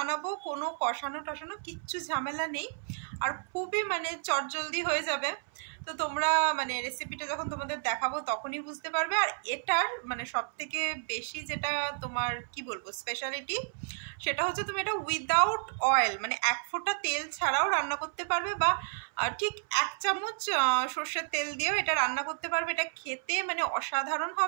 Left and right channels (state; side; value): silent; left; 57 dB below the other